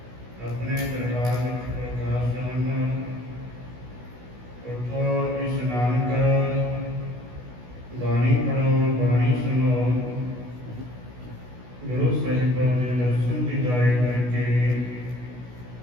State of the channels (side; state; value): left; late; 16 ms